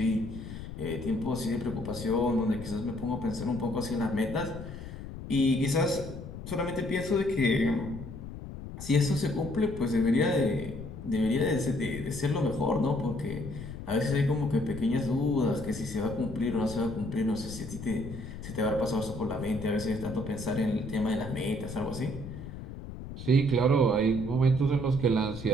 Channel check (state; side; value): noise; left; rumble, 10 dB below the sound